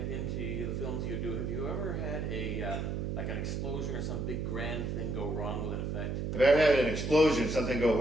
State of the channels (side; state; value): right; noise; hum, 2 dB below the sound